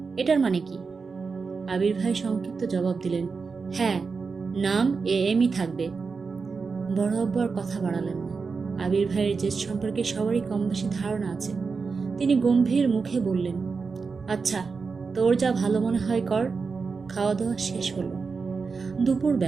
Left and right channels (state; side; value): quieter; left; 4.9 dB